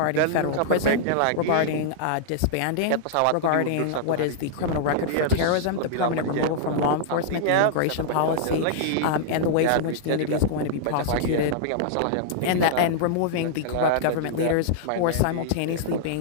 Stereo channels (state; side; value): different; both; correlation -0.01